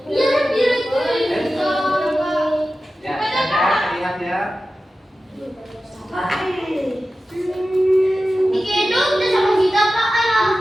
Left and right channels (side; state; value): both; normal; correlation 0.94